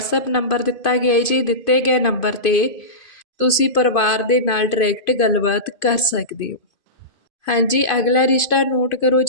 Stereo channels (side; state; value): right; late; 2.5 ms